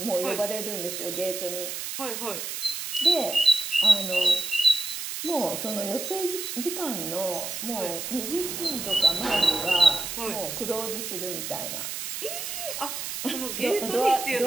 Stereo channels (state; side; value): noise; right; hiss, 5 dB below the sound